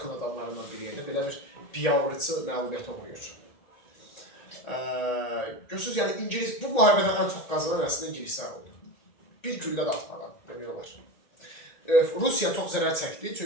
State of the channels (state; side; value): late; right; 1.8 ms